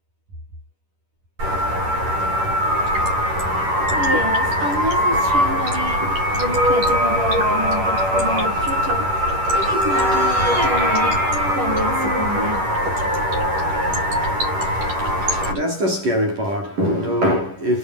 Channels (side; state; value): left; late; 10 ms